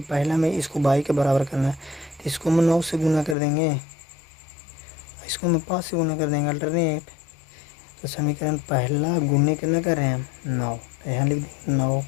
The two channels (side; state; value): right; drops out; at 3.4 s